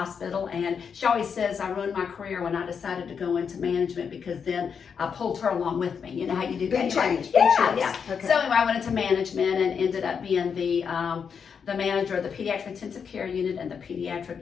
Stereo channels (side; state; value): right; quieter; 6.6 dB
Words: and she always says I ruined my career when I decided to go into management because then I pulled her along with me. You know how you do Big that? change. Yeah. Okay. So anyway, I went into management and ended up being the manager of the pediatric intensive care unit and the